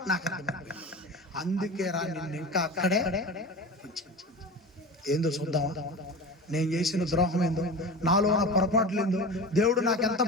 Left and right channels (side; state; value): both; normal; correlation 0.31